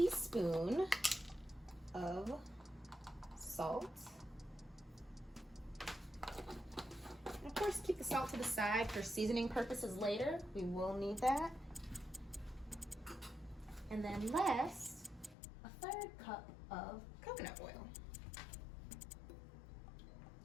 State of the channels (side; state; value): right; drops out; at 15.4 s